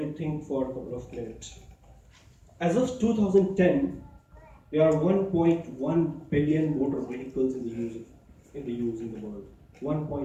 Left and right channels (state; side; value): identical; both; correlation 1.00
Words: think for a couple of minutes. As of 2010, there are 1.1 billion motor vehicles in the world.